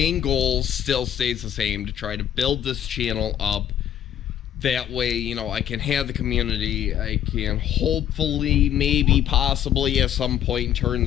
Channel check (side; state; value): right; quieter; 10.5 dB